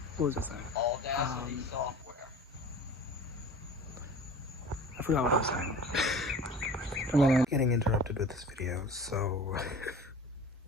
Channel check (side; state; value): both; normal; correlation 0.40